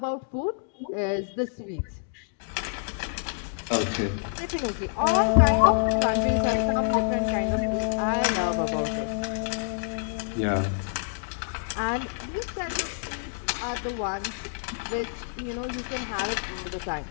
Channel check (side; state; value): right; silent; digital silence